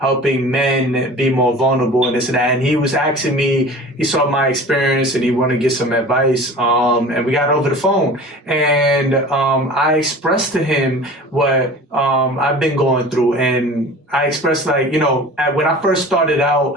men be more vulnerable and this and that. And he was asking me, he saw my experience and he wanted to get some advice. And we got over the phone, and I expressed to him what I've been going through. And I expressed like, when I first started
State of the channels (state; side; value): normal; both; correlation 0.40